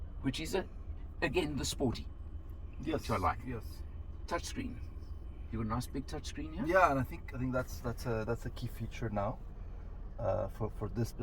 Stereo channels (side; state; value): both; identical; correlation 1.00